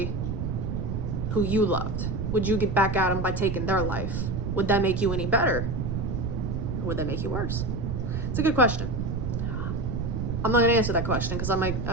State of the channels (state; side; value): noise; right; rumble, 2 dB below the sound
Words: who you loved? would you get back at them by taking their life? Would that make you any better? Or would that make you worse? It's a good question. I'm not going to answer that question because I might